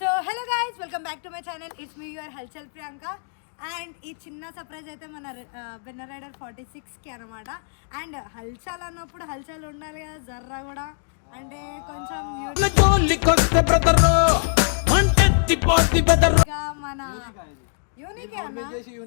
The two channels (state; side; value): silent; right; digital silence